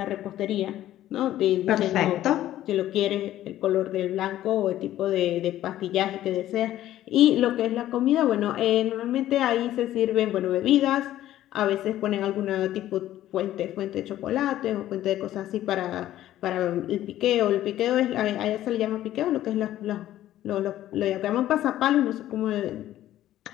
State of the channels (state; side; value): quieter; right; 13.4 dB